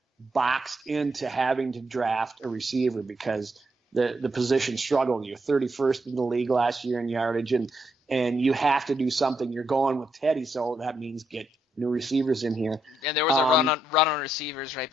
boxed into having to draft a receiver because the position struggled. You're 31st in the league last year in yardage, and you have to do something. You're going with Teddy, so that means get new receivers in here. And there was a run on receivers right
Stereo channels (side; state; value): both; normal; correlation 0.79